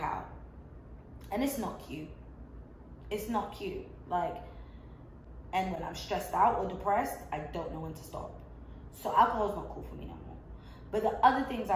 out, and it's not cute. It's not cute. Like, and when I'm stressed out or depressed, I don't know when to stop. So alcohol's not cool for me no more. But the other things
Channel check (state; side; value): identical; both; correlation 1.00